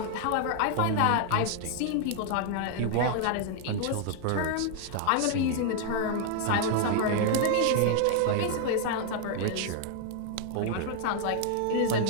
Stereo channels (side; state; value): both; different; correlation 0.00